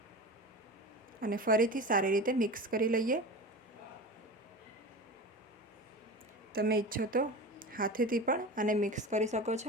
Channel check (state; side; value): normal; both; correlation 0.30